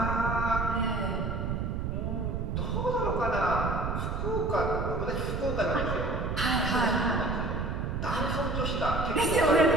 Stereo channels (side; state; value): right; noise; rumble, 2 dB below the sound